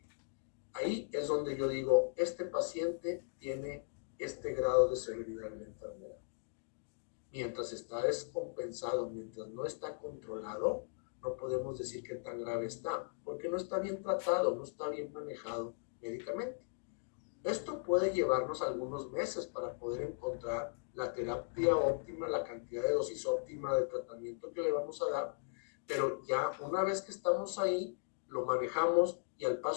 ahí es donde yo digo, este paciente tiene este grado de severidad de la enfermedad. Mientras está descompensado, mientras no está controlado, no podemos decir qué tan grave está, porque no está bien tratado, no está bien manejado médicamente. Esto puede llevarnos algunos meses para poder encontrar la terapia óptima, la cantidad de dosis óptima de tratamiento que le vamos a dar, pero ya una vez que estamos ahí, lo manejamos y al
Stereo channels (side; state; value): right; silent; digital silence